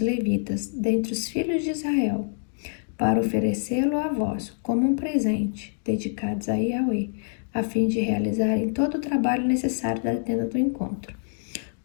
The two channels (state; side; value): silent; right; 61 dB below the other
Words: dentre os filhos de Israel, para oferecê-lo a vós como um presente, dedicados a Yahweh, a fim de realizarem todo o trabalho necessário da tenda do encontro.